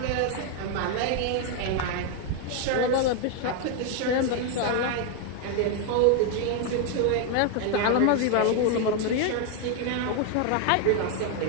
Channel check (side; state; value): both; different; correlation 0.01